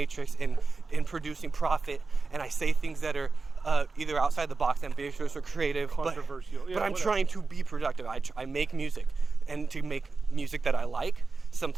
in producing profit, and I say things that are either outside the box, ambitious or creative, Controversial. but Yeah, I'm whatever. trying to be productive. I make music, and to make music that I like,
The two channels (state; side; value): quieter; left; 4.1 dB